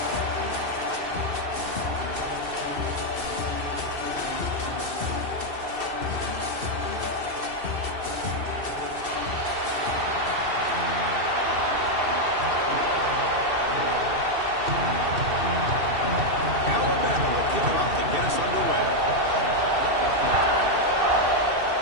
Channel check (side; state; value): left; late; 2.7 ms